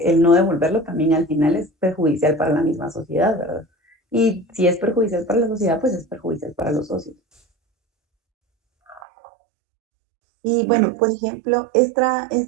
el no devolverlo también al final es perjudicial para la misma sociedad, ¿verdad? Y si es perjudicial para la sociedad, pues es perjudicial para los socios. Y bueno, por ejemplo, esta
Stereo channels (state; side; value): drops out; left; at 9.0 s